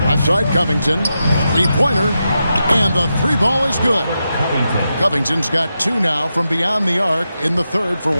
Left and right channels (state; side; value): inverted; both; correlation -0.88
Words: Outside Covington. Three-pointer. And the 3-ball is good. Covington's got 2 now from beyond the arc in the 3rd for